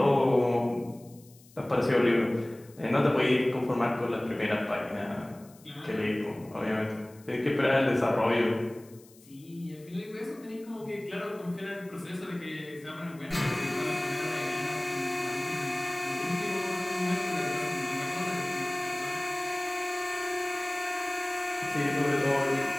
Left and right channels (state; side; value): noise; left; hiss, 26 dB below the sound